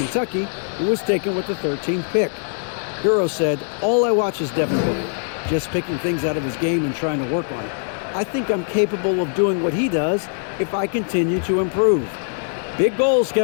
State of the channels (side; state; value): right; silent; 65 dB below the other